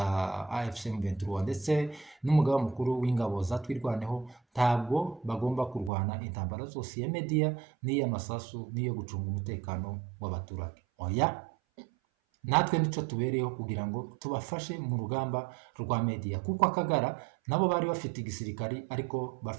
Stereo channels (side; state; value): left; drops out; at 5.9 s